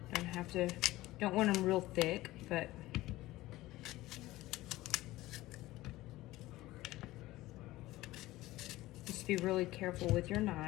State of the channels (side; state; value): right; quieter; 17.5 dB